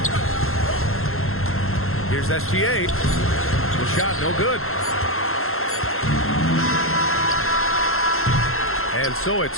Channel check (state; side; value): late; right; 0.61 ms